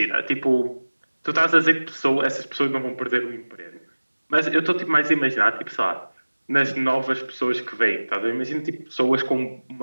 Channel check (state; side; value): inverted; both; correlation -1.00